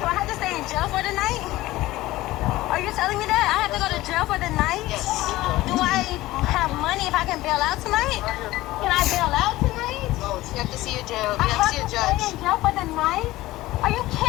I have to stay in jail for the night? Are you telling me that? I have to go to jail for the night? Yes. Do I have money if I can bail out tonight? Can I bail out tonight? No, you have to see a jail. You have to see a judge. Stay in jail for the night? Are you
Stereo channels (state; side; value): quieter; right; 17.5 dB